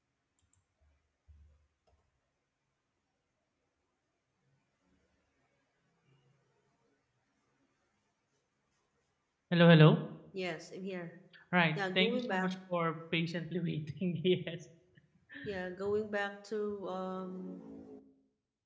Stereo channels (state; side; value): identical; both; correlation 1.00